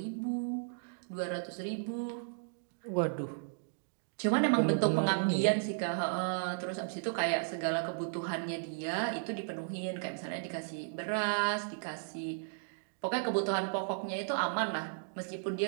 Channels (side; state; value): left; silent; digital silence